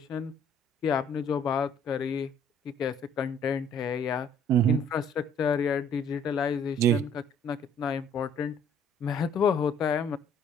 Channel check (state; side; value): normal; both; correlation 0.59